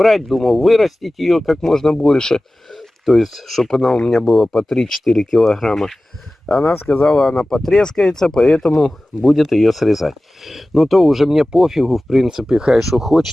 думал вырастить ее как можно больше. То есть, чтобы она у меня была по 3-4 килограмма. Она сказала, она потрескается, поэтому будет ее срезать. Ну, то уже мне пофигу, в принципе, хай что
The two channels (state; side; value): normal; both; correlation 0.97